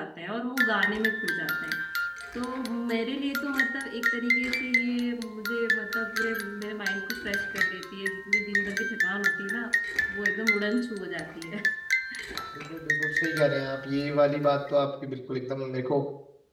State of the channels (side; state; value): both; identical; correlation 1.00